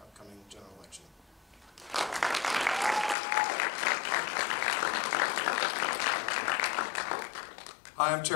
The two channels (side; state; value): right; drops out; at 3.2 s